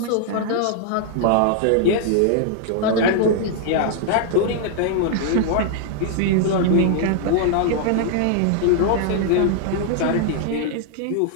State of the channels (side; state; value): both; different; correlation -0.01